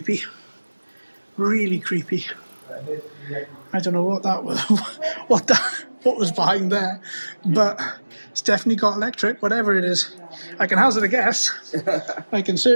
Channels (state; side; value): inverted; both; correlation -1.00